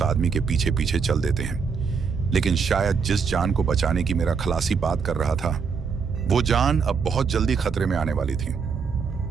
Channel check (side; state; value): left; quieter; 5.7 dB